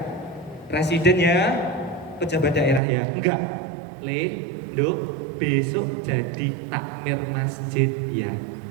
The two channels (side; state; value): left; drops out; at 2.8 s